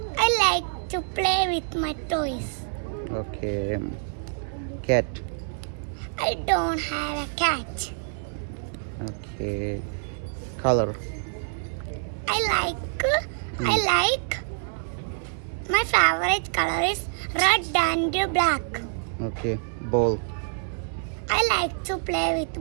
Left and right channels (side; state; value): left; silent; digital silence